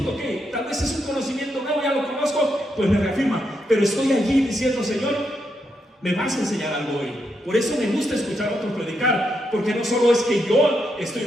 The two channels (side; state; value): both; normal; correlation 0.81